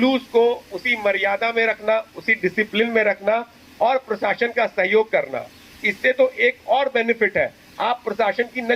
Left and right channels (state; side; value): identical; both; correlation 1.00